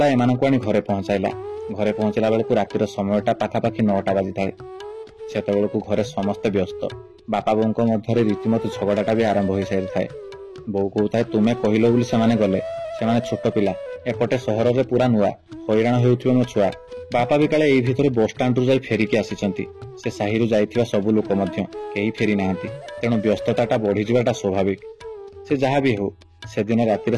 एमानकु आनी घरे पहुंचाइला। घरे पहुंचला बेलकु रातिर समयटा पाखापाखि 9टा बाजी थाए। सेतेबेलकु घरे समस्त व्यस्त। बापा बोंको मध्यरे रीतिमत झगड़ाटा भी आरंभ होई सारि थाए। बो कहूଥାଏ, तुमे कहिलो बोली सेमाने गले, सेमाने छोट पिला, एपटे सहर रे पूरा नुआ, हैरान हेउथिबे मो छुआ, बापा भी काले एई भितरे बस स्टाण्ड रु जाई फेरिकी आसिचंती। से साहिरु जाइथिबा सबु लोक मध्य केही फेरी नाहांती, तेणु व्यस्तताटा बढ़ी जिबाटा स्वाभाविक। से जहाँ भी हो से दिन रातिर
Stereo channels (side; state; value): both; identical; correlation 1.00